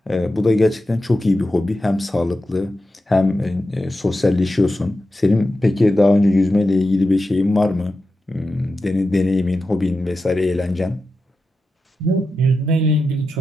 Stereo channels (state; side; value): normal; both; correlation 0.91